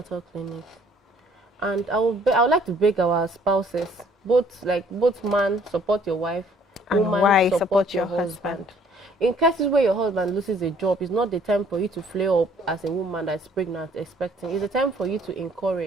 clinic. And I would like to beg our spouses, both man support your wife, and woman support your husband. In cases where your husband loses a job, it's not the time for you to flare up as a woman that's pregnant expecting. It's the time for you to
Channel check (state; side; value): normal; both; correlation 0.60